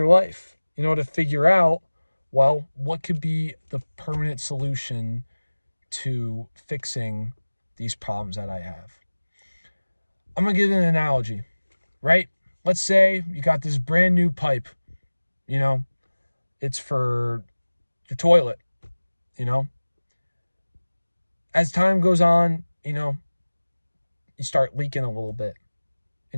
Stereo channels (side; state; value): both; inverted; correlation -1.00